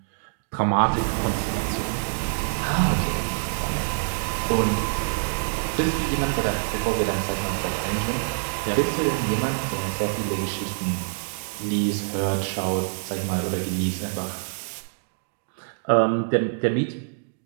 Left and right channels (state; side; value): silent; left; digital silence